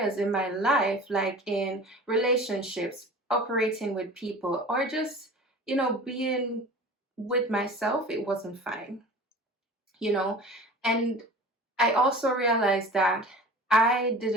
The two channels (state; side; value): normal; both; correlation 0.39